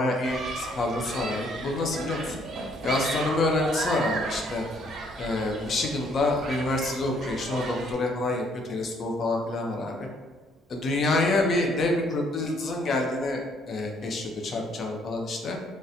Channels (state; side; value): normal; both; correlation 0.66